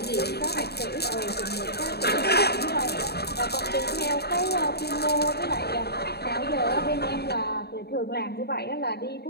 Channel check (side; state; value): right; late; 0.47 ms